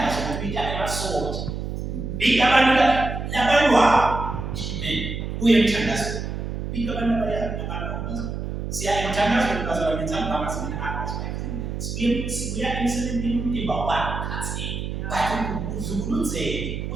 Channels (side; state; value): right; noise; hum, 5 dB below the sound